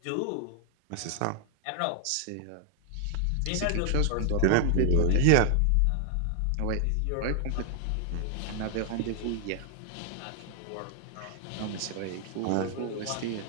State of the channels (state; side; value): different; both; correlation 0.00